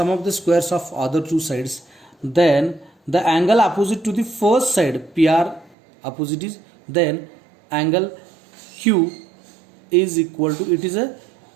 of the squares of other two sides, then the angle opposite to the first side, PR opposite is, then angle Q is equal to, it is a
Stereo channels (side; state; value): left; drops out; at 5.8 s